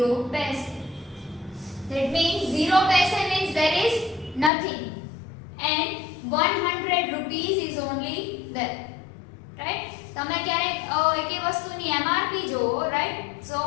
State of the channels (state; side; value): drops out; right; at 4.5 s